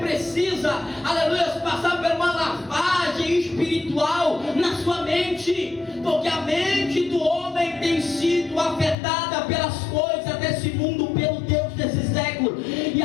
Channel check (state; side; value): drops out; right; at 9.0 s